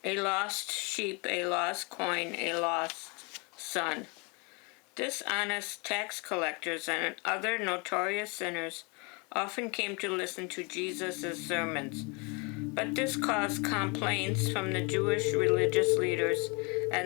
A lost sheep, a lost coin, a lost son. Dishonest tax collectors and other notorious sinners often came to listen to Jesus' sermons, but this caused complaints from the Jewish religious leaders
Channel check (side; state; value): right; quieter; 30.8 dB